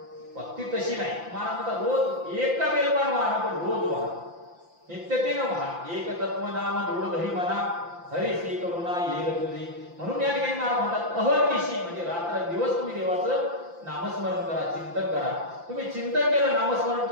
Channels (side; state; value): left; late; 5.8 ms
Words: भक्ती तशी नाही. महाराज म्हणतात रोज एक का बेलपान व्हा, पण रोज व्हा, नित्यतेनं व्हा. एक तत्व नाम दृढधरी म्हणा, हरिसी करुणा येईल तुझी. म्हणून या ठिकाणी महाराज म्हणतात अहर्निशी, म्हणजे रात्र दिवस तुम्ही देवाचं नामस्मरण करा, चिंतन करा. तुम्ही चिंतन केलं, नामस्मरण